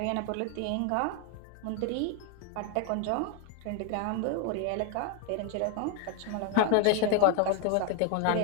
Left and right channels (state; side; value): different; both; correlation 0.00